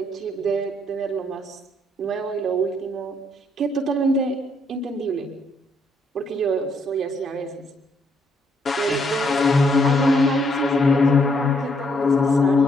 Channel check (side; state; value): both; normal; correlation 0.72